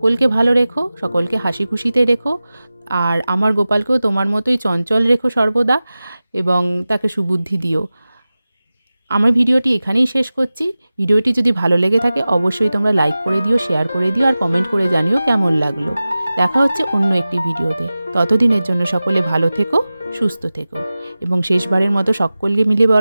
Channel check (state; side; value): inverted; both; correlation -0.96